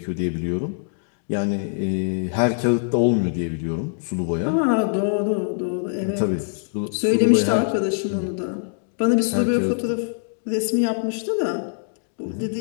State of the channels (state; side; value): silent; right; digital silence